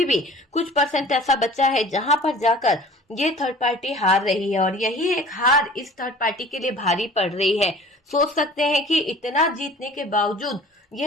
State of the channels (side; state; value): both; normal; correlation 0.45